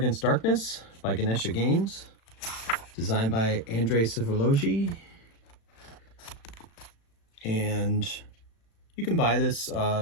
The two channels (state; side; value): late; right; 36 ms